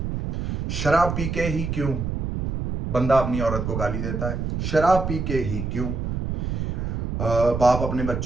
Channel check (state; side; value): noise; right; rumble, 2 dB below the sound